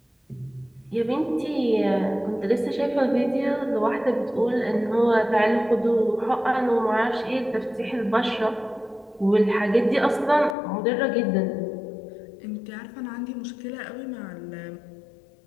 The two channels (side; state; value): right; drops out; at 10.6 s